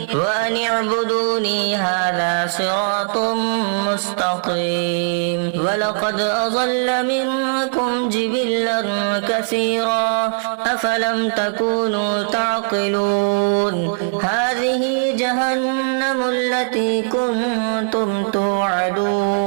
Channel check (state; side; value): silent; left; digital silence